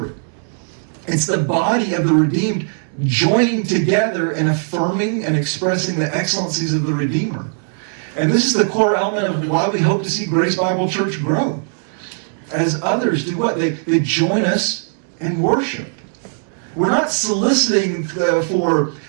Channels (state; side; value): silent; left; digital silence